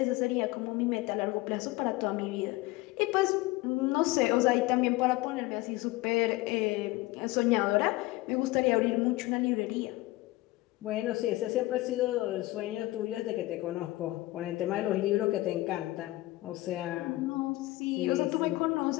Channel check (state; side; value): quieter; right; 19.2 dB